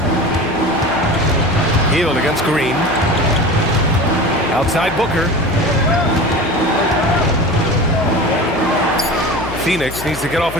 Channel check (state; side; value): noise; left; hum, 13 dB below the sound